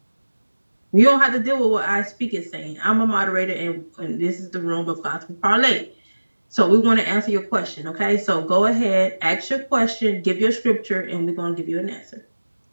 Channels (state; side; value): inverted; both; correlation -1.00